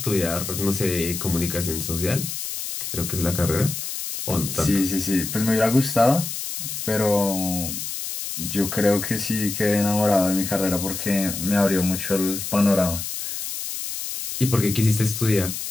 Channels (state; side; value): noise; left; hiss, 6 dB below the sound